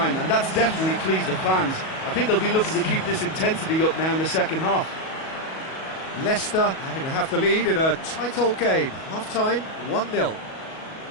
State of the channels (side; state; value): right; late; 37 ms